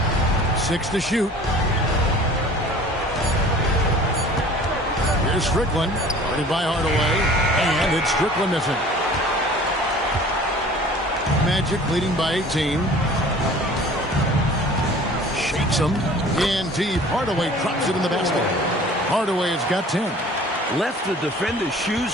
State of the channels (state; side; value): normal; both; correlation 0.47